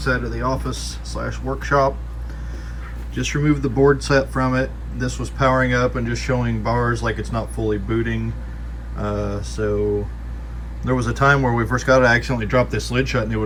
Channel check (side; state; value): both; identical; correlation 1.00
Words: of the office / workshop. Just removed the board set from it. This was powering up and just showing bars like it's not fully booting. So there was a time where we first got it, I accidentally dropped this lid shut and it